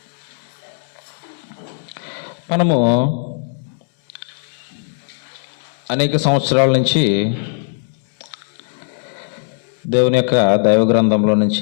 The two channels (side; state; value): right; silent; digital silence